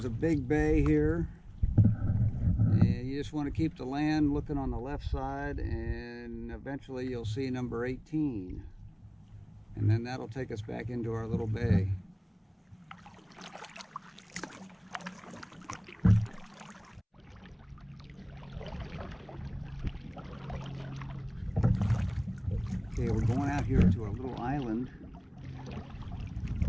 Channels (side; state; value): both; identical; correlation 1.00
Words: a big bay here, and you just want to keep the land looking on the left side, and eventually you'll see number 18, and then that'll take us back into our little bay. Okay, we're going out here to a little island.